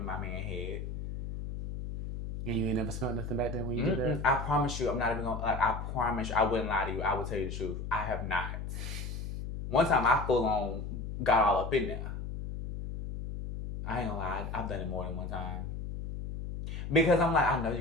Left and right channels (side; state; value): left; noise; hum, 6 dB below the sound